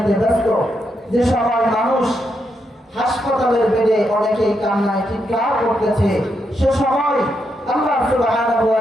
ব্যস্ত, যে সময় মানুষ হাসপাতালের বেডে অনেকেই কান্নায় চিৎকার করতেছে, সে সময় আল্লাহ সুবহানাহু ওয়া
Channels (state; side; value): normal; both; correlation 0.81